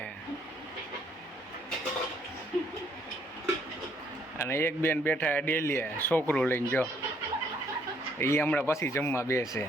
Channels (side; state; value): both; normal; correlation 0.67